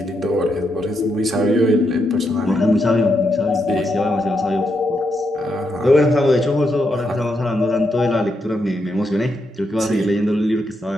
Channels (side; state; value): both; normal; correlation 0.81